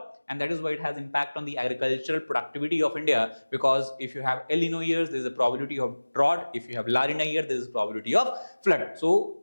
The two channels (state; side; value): inverted; both; correlation -1.00